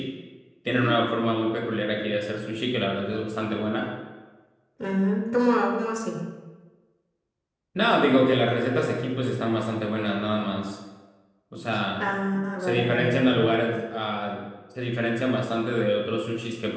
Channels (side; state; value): both; identical; correlation 1.00